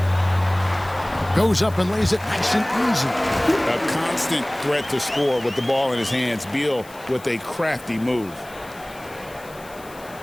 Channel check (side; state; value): left; noise; hiss, 22 dB below the sound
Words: Goes up and lays it nice and easy. A constant threat to score with the ball in his hands. Beal with a crafty move.